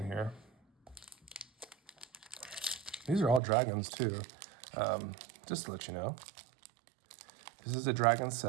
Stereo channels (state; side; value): drops out; left; at 3.4 s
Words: here. These are all dragons too. Just to let you know, this is a dragon